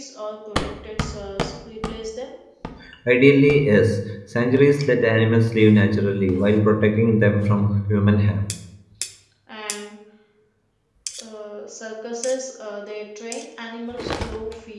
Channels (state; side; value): identical; both; correlation 1.00